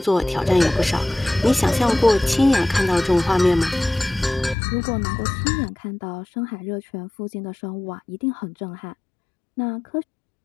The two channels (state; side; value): drops out; right; at 4.5 s